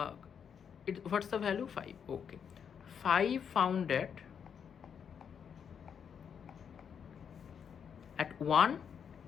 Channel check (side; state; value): right; quieter; 7.4 dB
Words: what's the value? 5. Okay, 5 found at 1,